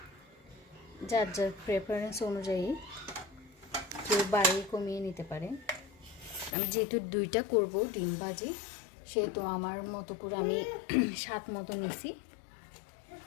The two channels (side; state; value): right; drops out; at 6.6 s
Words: যার যার প্রেফারেন্স অনুযায়ী কেউ বাড়িয়ে কমিয়ে নিতে পারে। আমি যেহেতু দুইটা করব ডিম ভাজি, সেহেতু আমার মতো করে আমি স্বাদ মতো নিছি।